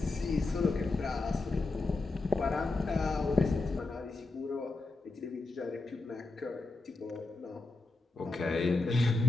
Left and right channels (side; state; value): right; quieter; 3.4 dB